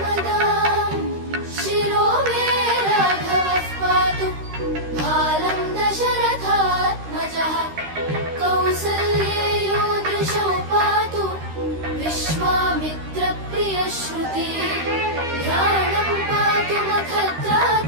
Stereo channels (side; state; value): left; late; 13 ms